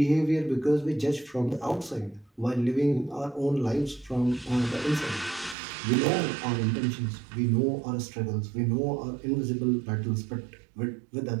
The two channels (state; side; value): drops out; left; at 5.6 s